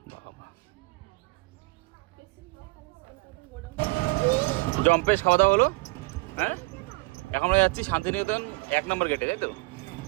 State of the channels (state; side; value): quieter; left; 26.0 dB